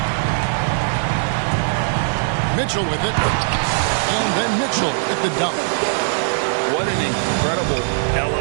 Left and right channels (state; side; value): silent; left; digital silence